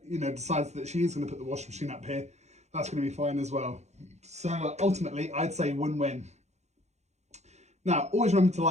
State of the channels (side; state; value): left; late; 0.33 ms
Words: that she is going to put the washing machine up here, that's going to be fine as well. So ultimately, I'd say win-win. Now, always remember to